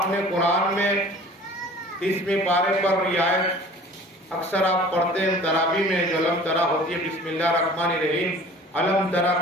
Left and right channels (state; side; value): normal; both; correlation 0.46